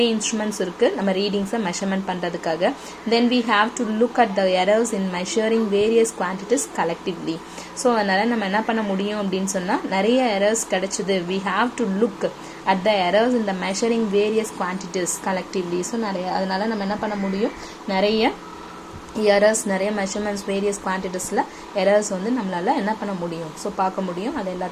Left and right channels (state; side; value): identical; both; correlation 1.00